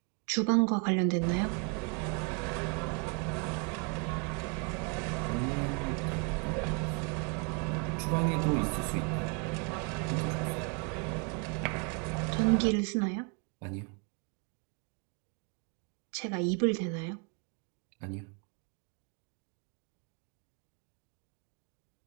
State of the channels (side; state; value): left; quieter; 35.3 dB